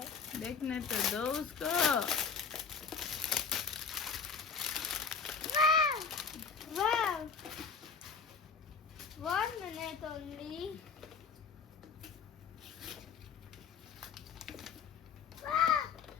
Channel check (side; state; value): right; quieter; 5.7 dB